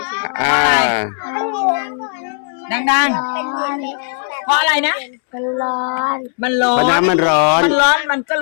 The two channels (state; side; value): silent; right; 69 dB below the other